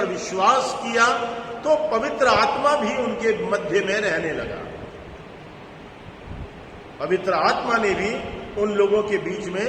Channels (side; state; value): both; identical; correlation 1.00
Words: विश्वास किया, तो पवित्र आत्मा भी उनके मध्य में रहने लगा। पवित्र आत्मा ने भी उन लोगों के बीच में